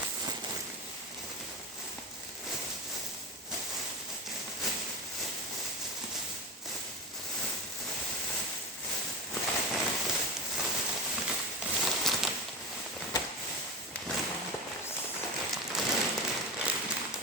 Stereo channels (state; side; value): normal; both; correlation 0.22